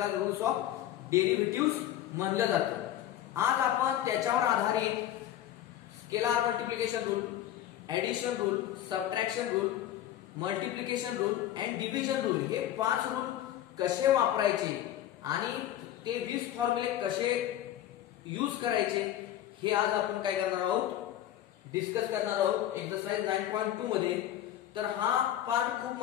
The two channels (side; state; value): right; quieter; 12.1 dB